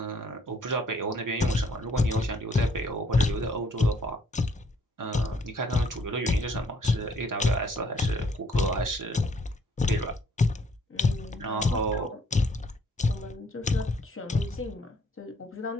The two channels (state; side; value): normal; both; correlation 0.64